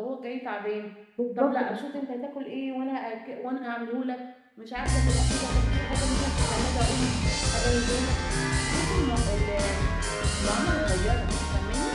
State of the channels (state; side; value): identical; both; correlation 1.00